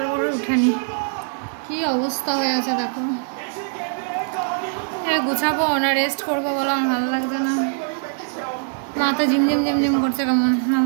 করে উঠেনি, কি অবস্থা হয়ে আছে দেখো। গুছাবো না রেস্ট করবো বলো, আমার ভালো লাগছে না, মাথা ঝিমঝিম ঝিমঝিম করছে, কেমন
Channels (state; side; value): silent; left; 60 dB below the other